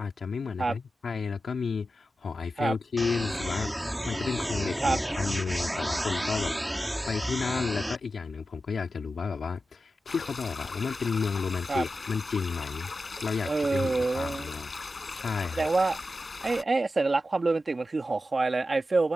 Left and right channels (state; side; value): normal; both; correlation 0.91